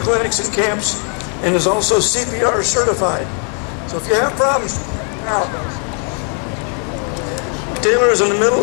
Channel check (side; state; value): right; quieter; 35.6 dB